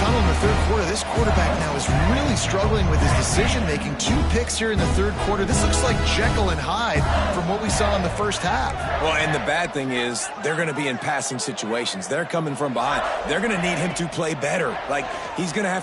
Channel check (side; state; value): both; identical; correlation 1.00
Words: in the 3rd quarter, this quarterback now is really struggling with his decision-making. 2 picks here in the 3rd quarter. This looks like Jekyll and Hyde from what we saw in the 1st half. Well, and the bad thing is they're going to be in passing situations. They're coming from behind. They're going to need him to play better. Like, he's going to